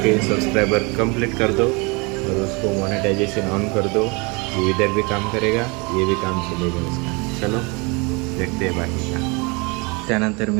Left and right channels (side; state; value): left; quieter; 28.9 dB